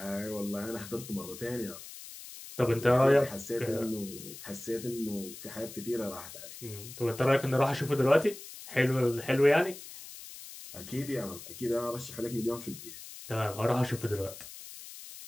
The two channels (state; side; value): noise; left; hiss, 14 dB below the sound